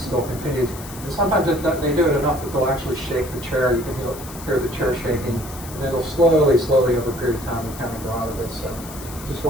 still continues. And sometimes they do it enough that they'll actually shake the chair. You can hear the chair shaking, and then it'll slowly over a period of time, kind of go out of it. So just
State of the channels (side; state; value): left; noise; hiss, 15 dB below the sound